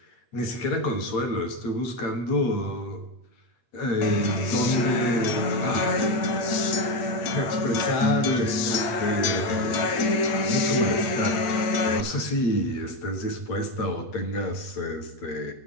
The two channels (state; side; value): late; right; 8.8 ms